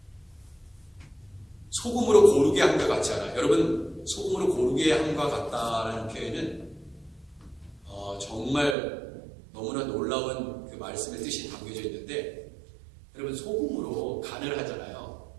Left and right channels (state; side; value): drops out; left; at 8.8 s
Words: 소금으로 고르게 한 것 같지 않아요? 여러분, 소금으로 고르게 한 것 같다라는 표현은 정말 너무나 놀라운 그 말씀의 뜻이 담겨져 있는데, 여러분, 소금으로 간을 하잖아요.